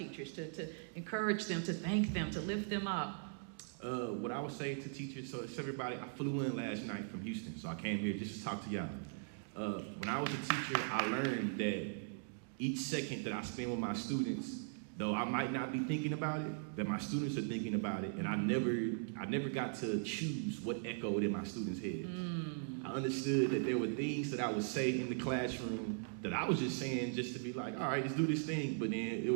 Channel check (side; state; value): left; silent; digital silence